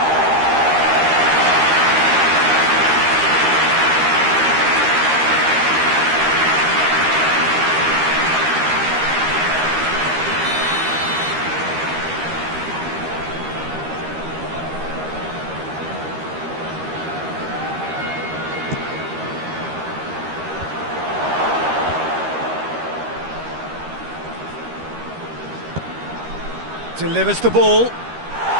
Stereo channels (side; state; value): left; late; 13 ms